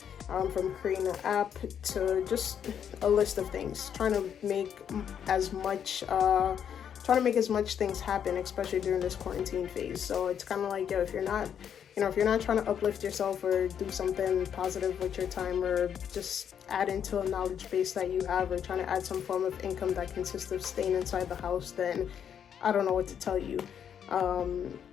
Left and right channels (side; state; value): right; quieter; 8.5 dB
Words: from creating an app to just a list of things, trying to make as much things happen, especially during this quarantine phase. So it's kind of like, yo, if you're not trying to uplift yourself or do something positive with your time, or just add into a knowledge base that you have, or trying to add some form of income that consists of staying inside the house, then I don't know what to tell you.